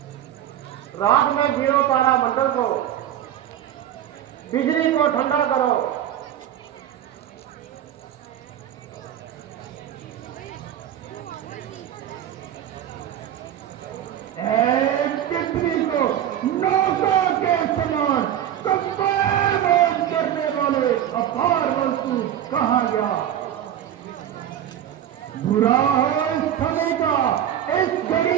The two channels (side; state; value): left; quieter; 10.8 dB